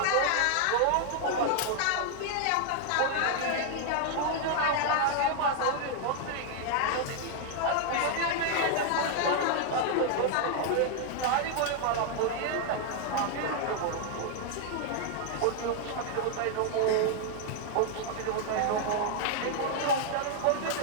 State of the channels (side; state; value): both; different; correlation 0.00